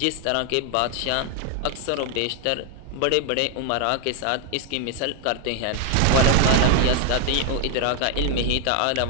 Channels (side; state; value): both; different; correlation 0.00